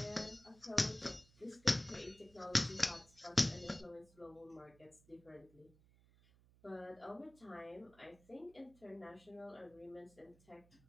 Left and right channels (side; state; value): right; noise; hum, 27 dB below the sound